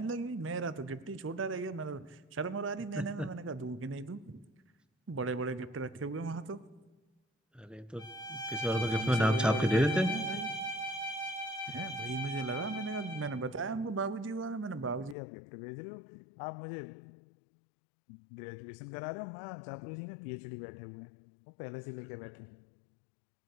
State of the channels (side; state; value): right; drops out; at 15.2 s